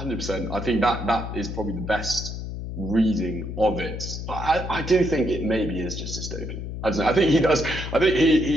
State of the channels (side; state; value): left; noise; hum, 7 dB below the sound